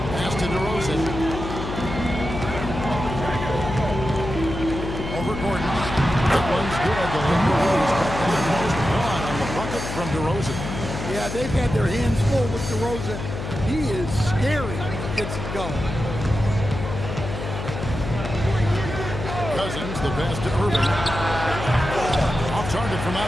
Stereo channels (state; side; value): noise; left; hum, 6 dB below the sound